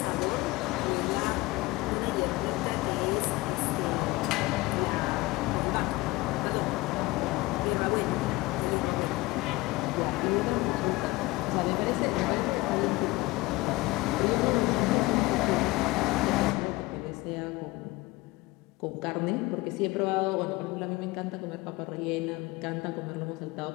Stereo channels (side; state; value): right; quieter; 20.9 dB